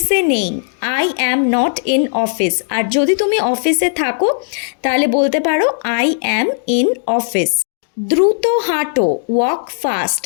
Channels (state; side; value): silent; right; digital silence